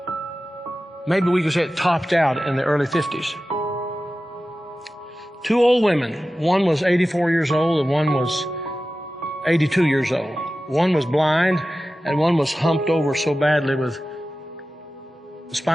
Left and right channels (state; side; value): normal; both; correlation 0.95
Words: Maybe we could say it topped out in the early 50s. Two old women, one was 84 years old and one was 82 years old. One was blind and one was humped over so badly with